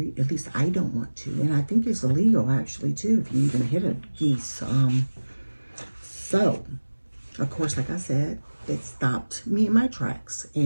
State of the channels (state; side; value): inverted; both; correlation -1.00